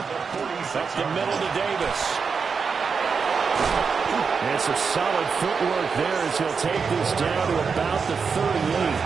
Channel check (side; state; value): left; quieter; 5.5 dB